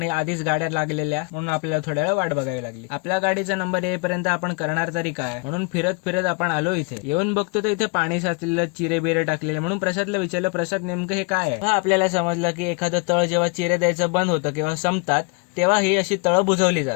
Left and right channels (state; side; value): quieter; right; 32.0 dB